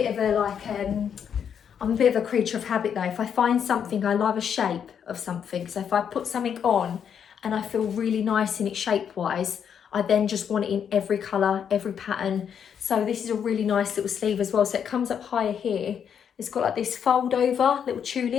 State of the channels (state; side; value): quieter; right; 8.0 dB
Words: of a creature of habit though. If I find something, I love a shape of something. So if I put something on and I feel really nice in it shape-wise, I then just want it in every colour, every pattern. So this is a really nice little sleeve as well. So it comes up higher here. It's got like this fold over little